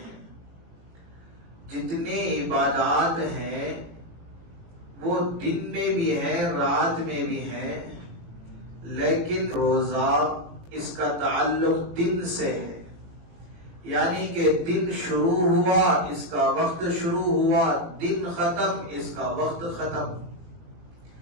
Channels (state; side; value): late; left; 18 ms